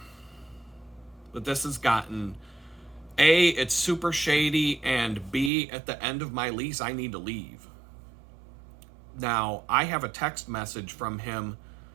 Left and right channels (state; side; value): drops out; left; at 5.5 s